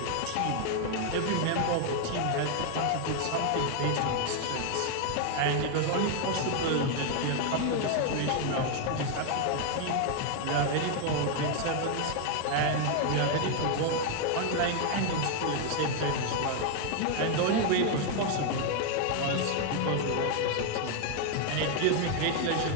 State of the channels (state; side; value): different; both; correlation 0.00